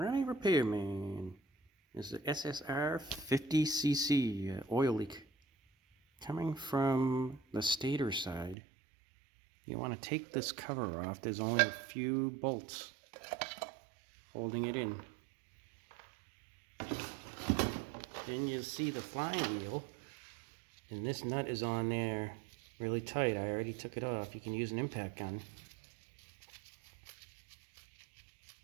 Repairman. This is the SR70C oil leak coming from the stator side. You want to take this cover off. There's only a few bolts holding it in. Then you'll see the flywheel, and this nut is on there really tight. I already took it off. You can use an impact gun.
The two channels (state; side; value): drops out; left; at 8.6 s